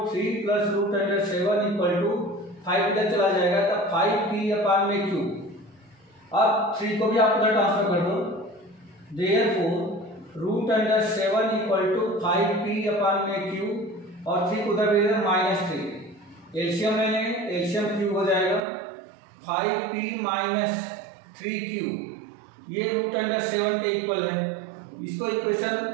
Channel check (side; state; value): left; drops out; at 18.6 s